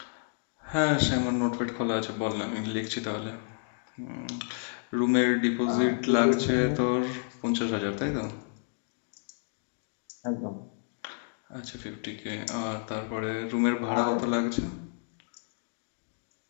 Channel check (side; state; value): right; silent; 58 dB below the other